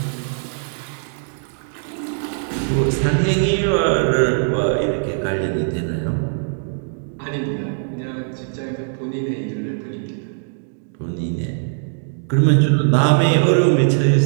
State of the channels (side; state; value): left; silent; digital silence